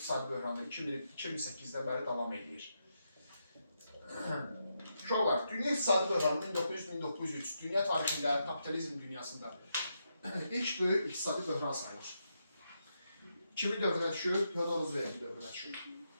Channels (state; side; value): inverted; both; correlation -0.83